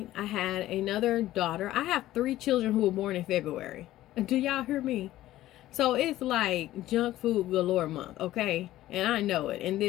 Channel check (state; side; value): quieter; right; 14.8 dB